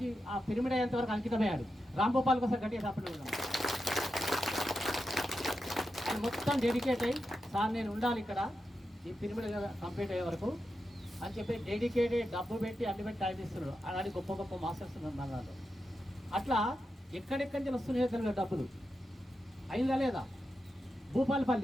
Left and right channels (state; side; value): normal; both; correlation 0.88